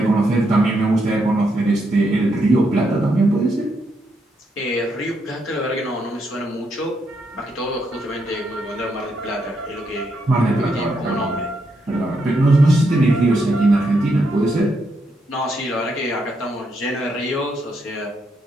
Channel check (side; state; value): both; normal; correlation 0.79